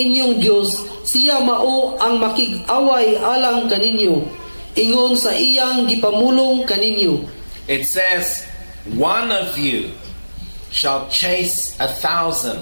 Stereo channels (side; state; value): both; inverted; correlation -1.00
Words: Dios, siya mao ang makig-away alang kaninyo ingon sa iyang gipamulong kaninyo. It says, one of you shall chase 1,000.